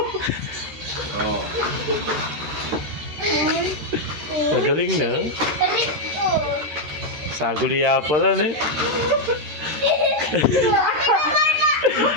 Oh. Magaling na. Balik ko. Saguliya pala na eh.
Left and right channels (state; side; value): late; left; 13 ms